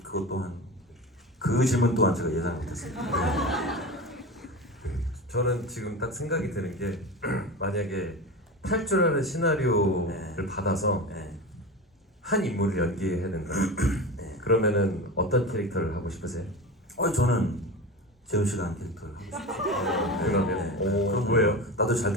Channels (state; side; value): normal; both; correlation 0.27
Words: 또한 그 질문 또한 제가 예상 못했습니다. 저는 지금 딱 생각이 드는 게 만약에 탈출하는 시나리오를 네. 받아서 네. 한 인물을 연기해야 된다. 네. 그러면은 어떤 캐릭터를 하고 싶으세요? 저는 재훈 씨가 한 캐릭터를 하고 싶어요. 그러면 그럼 뭐예요? 나도 잘